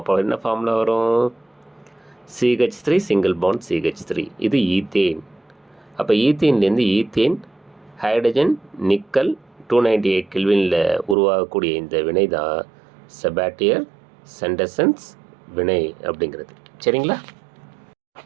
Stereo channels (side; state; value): left; drops out; at 11.2 s